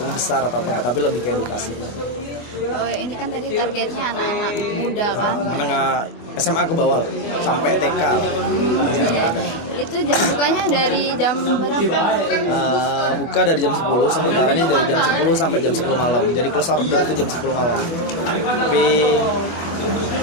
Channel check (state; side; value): late; right; 25 ms